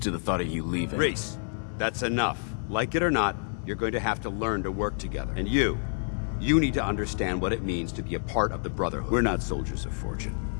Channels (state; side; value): silent; right; 59 dB below the other